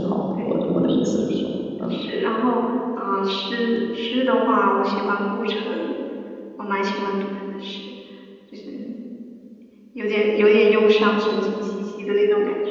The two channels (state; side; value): identical; both; correlation 1.00